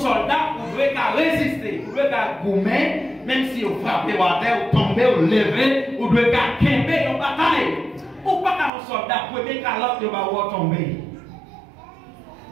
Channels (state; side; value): drops out; left; at 8.7 s